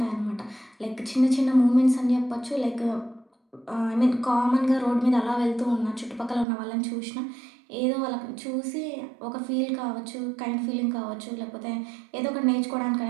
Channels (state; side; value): drops out; left; at 6.5 s